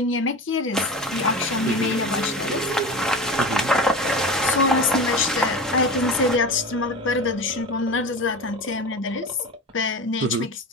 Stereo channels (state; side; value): normal; both; correlation 0.29